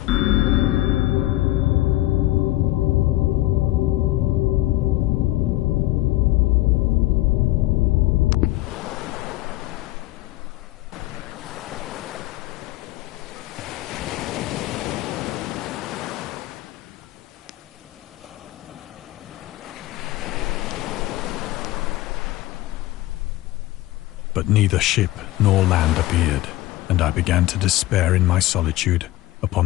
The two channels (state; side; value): quieter; right; 17.0 dB